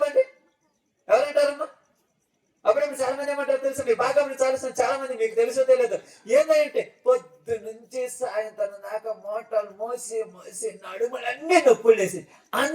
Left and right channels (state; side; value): identical; both; correlation 1.00